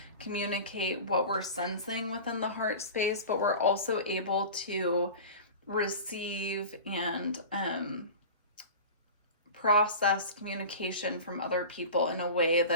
communicate what we're sensing within the heart space, but we're also able to receive and process communication from other people in a way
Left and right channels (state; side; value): inverted; both; correlation -0.34